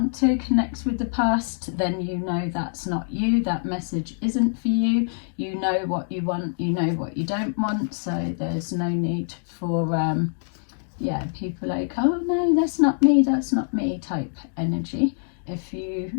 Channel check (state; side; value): silent; right; digital silence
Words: to connect with the past, then you know that's not you. That message isn't for you. You know what you want, you know what you don't want, so there's no need for yeah, people like, oh no, that's not me type energy. If you